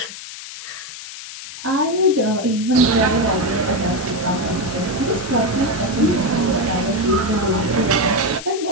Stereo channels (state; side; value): noise; left; hiss, 12 dB below the sound